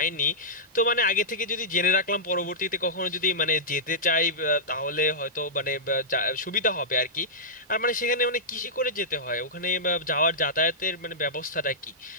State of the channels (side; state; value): both; normal; correlation -0.13